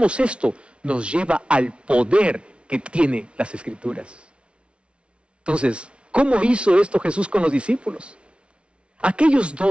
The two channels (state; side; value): late; left; 0.059 ms